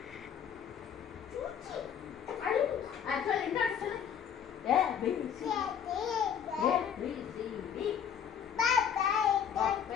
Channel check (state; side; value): quieter; right; 8.3 dB